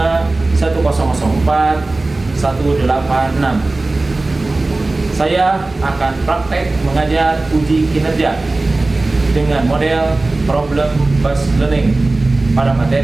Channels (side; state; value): left; quieter; 3.1 dB